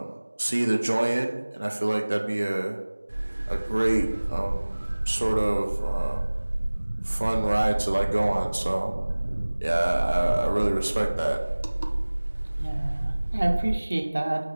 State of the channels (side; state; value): both; inverted; correlation -1.00